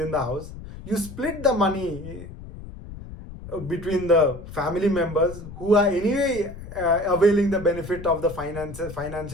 the house. You split the money between the family members who are anyway availing the benefit of the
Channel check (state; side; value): noise; left; rumble, 13 dB below the sound